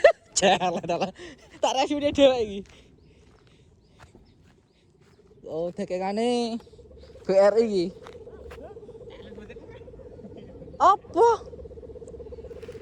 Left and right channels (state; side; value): identical; both; correlation 1.00